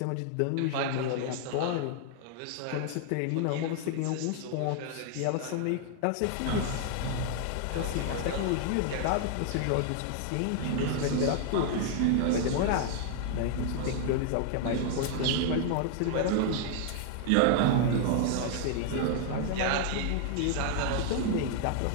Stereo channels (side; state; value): both; different; correlation 0.00